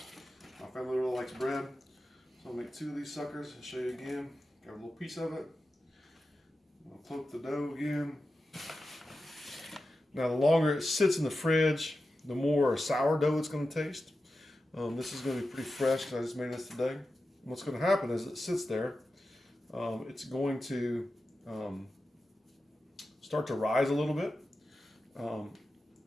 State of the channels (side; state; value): both; normal; correlation 0.92